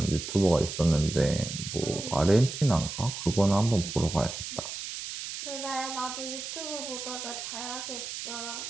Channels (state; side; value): noise; right; hiss, 7 dB below the sound